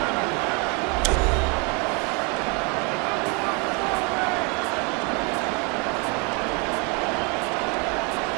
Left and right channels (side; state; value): left; quieter; 32.7 dB